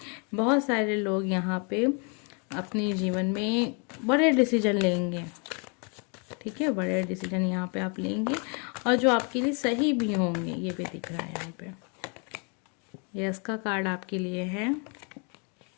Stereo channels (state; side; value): quieter; right; 36.0 dB